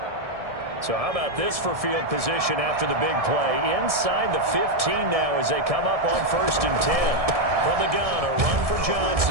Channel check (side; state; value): left; late; 1.7 ms